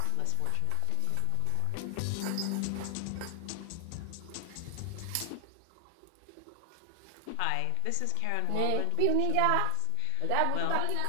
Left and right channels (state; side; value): different; both; correlation 0.00